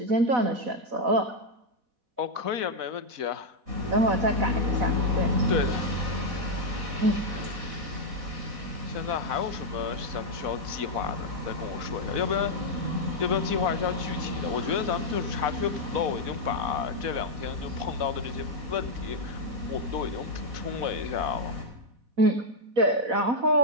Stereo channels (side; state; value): left; late; 4.1 ms